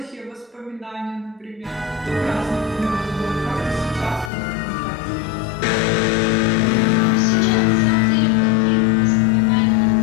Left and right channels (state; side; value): drops out; right; at 4.3 s